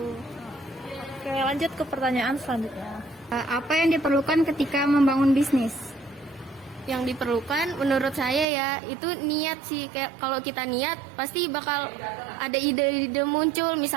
Oke, lanjut ke pertanyaan selanjutnya. Apa yang diperlukan ketika membangun bisnis? Yang diperlukan menurut saya ya itu niat sih. Kayak kalau kita niat pasti bakal ada ide-ide muncul.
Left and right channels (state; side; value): drops out; left; at 8.5 s